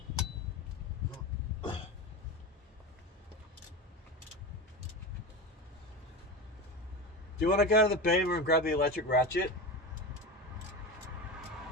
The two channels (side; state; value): both; normal; correlation 0.24